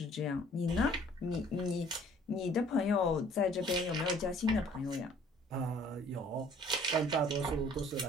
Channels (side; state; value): both; normal; correlation 0.55